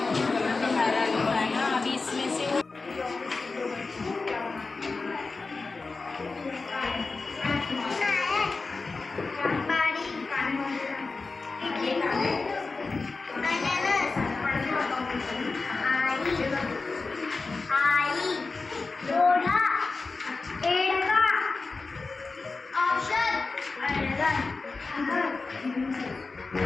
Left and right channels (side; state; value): right; quieter; 3.9 dB